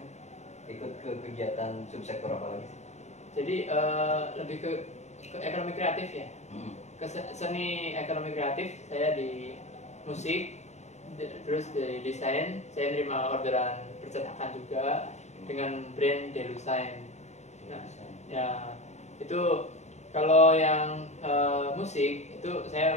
ikut ke kegiatan subsektor apa lagi sih? Jadi lebih ke ekonomi kreatif ya. Ke seni ekonomi kreatif saya di musik, terus di desain saya nerima orderan percetakan juga dengan brand Delusign. Nah, ya itu kalau yang musik itu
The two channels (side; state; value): right; late; 0.33 ms